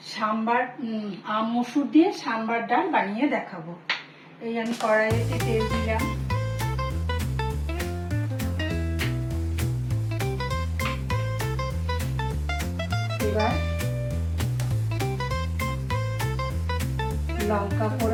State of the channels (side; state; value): both; identical; correlation 1.00